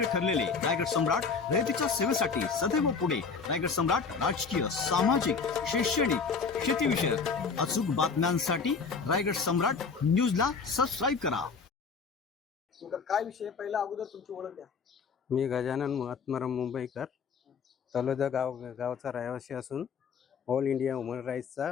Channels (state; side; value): quieter; right; 5.3 dB